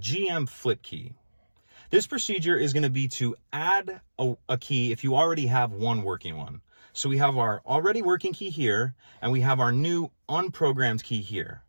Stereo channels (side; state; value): both; inverted; correlation -1.00